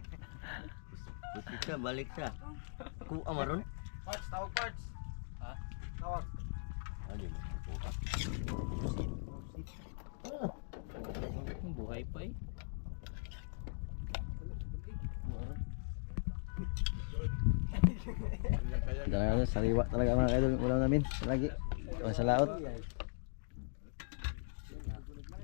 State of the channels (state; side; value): silent; right; digital silence